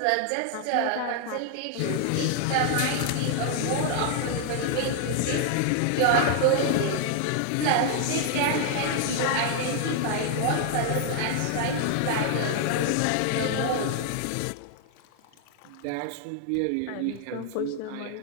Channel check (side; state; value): both; different; correlation 0.00